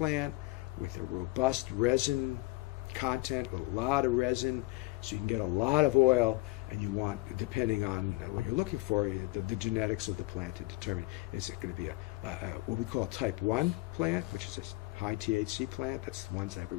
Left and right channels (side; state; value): right; quieter; 21.5 dB